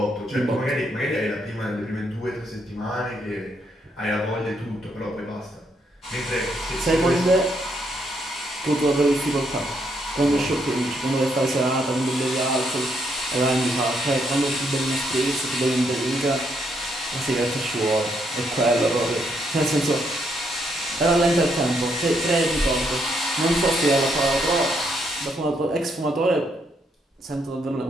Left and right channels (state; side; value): normal; both; correlation 0.75